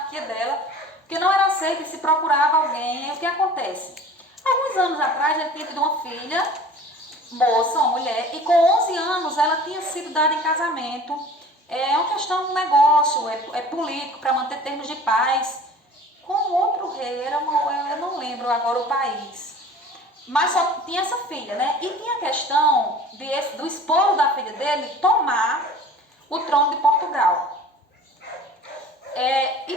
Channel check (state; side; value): normal; both; correlation 0.44